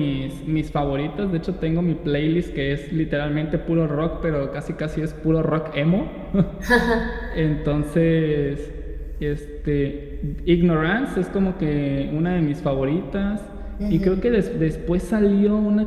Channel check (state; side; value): identical; both; correlation 1.00